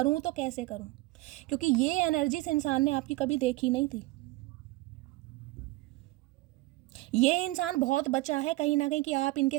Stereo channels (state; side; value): quieter; left; 19.8 dB